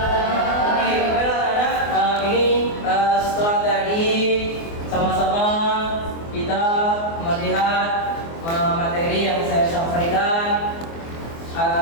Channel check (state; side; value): late; right; 24 ms